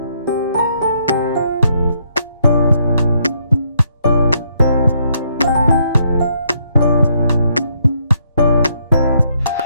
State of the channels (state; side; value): inverted; both; correlation -0.73